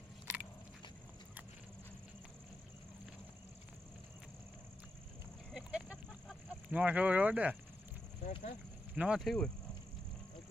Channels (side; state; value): both; normal; correlation 0.86